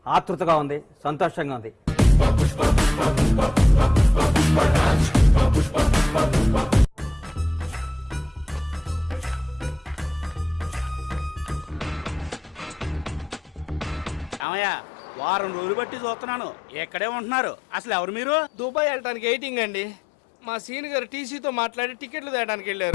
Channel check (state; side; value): drops out; right; at 14.5 s